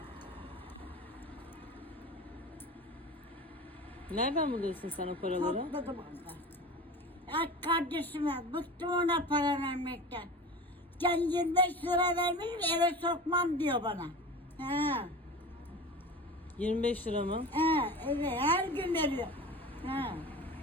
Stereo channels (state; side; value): normal; both; correlation 0.33